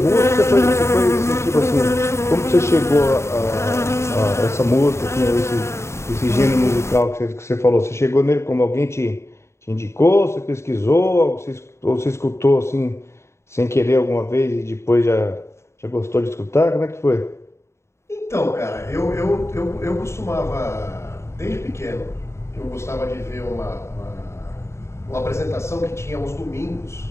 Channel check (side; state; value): right; late; 0.13 ms